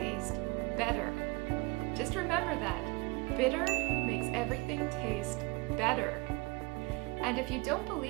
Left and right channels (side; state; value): left; quieter; 25.5 dB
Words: better. Just remember that. Bitter makes everything taste better. And if you don't